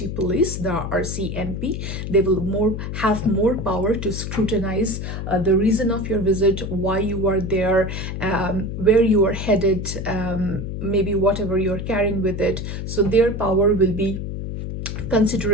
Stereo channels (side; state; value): left; noise; hum, 5 dB below the sound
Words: Police, the RCMP. They will have more power to scrutinize the reason of your visit, why you are there, where you are headed, maybe whatever you're carrying with it. So their power will be